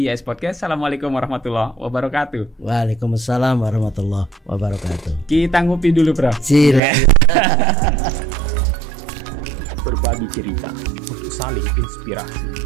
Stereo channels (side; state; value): left; drops out; at 6.8 s